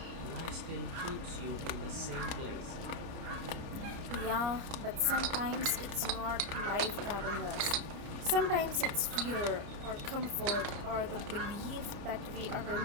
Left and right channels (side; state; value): left; late; 29 ms